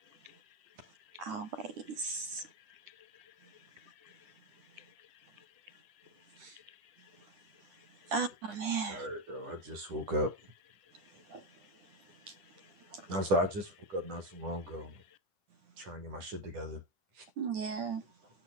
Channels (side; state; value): left; late; 10 ms